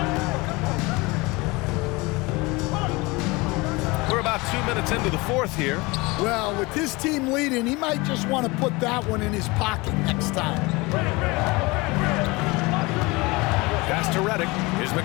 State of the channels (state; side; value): quieter; right; 24.3 dB